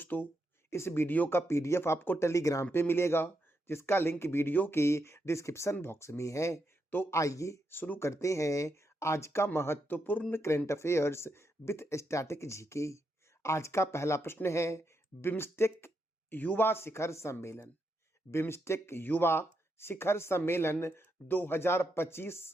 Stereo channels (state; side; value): normal; both; correlation 0.82